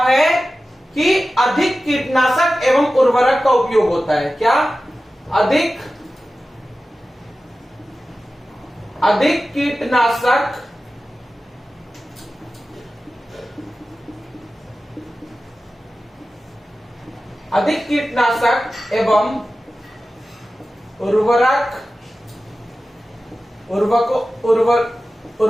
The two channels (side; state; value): both; normal; correlation 0.94